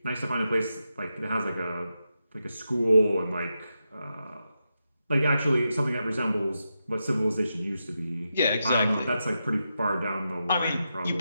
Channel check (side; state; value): both; inverted; correlation -0.87